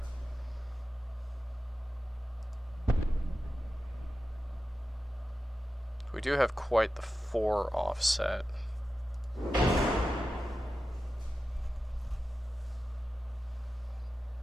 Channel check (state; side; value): normal; both; correlation 0.93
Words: We do have quite the 4 offset.